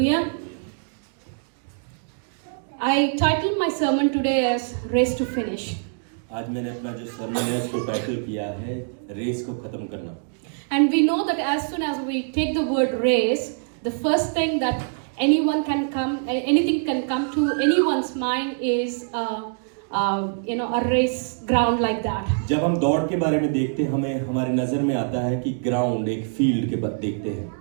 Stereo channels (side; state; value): left; silent; digital silence